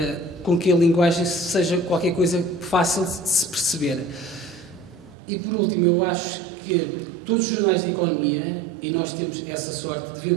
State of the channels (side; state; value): left; drops out; at 5.2 s